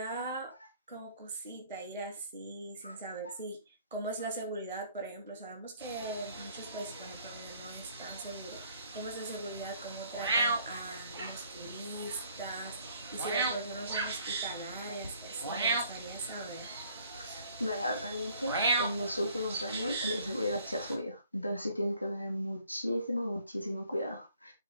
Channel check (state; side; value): inverted; both; correlation -0.62